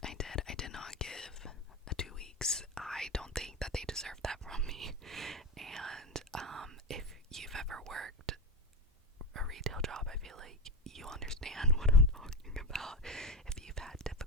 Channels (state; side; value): normal; both; correlation 0.18